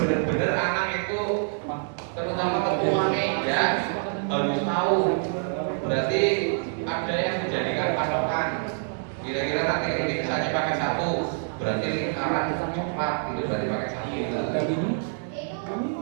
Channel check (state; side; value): silent; left; digital silence